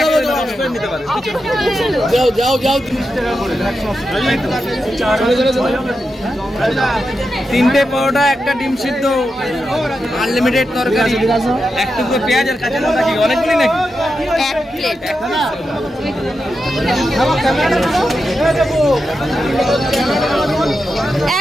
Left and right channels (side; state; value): both; normal; correlation 0.88